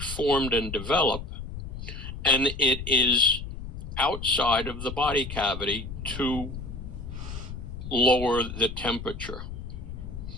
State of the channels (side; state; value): left; noise; rumble, 8 dB below the sound